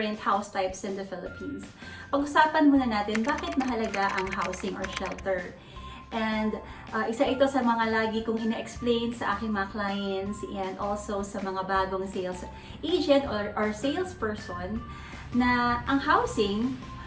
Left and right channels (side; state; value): both; identical; correlation 1.00